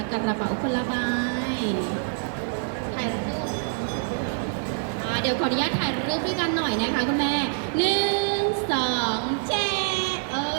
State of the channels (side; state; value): left; silent; 60 dB below the other